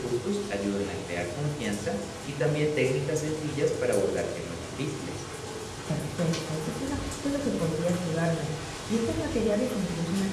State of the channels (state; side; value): identical; both; correlation 1.00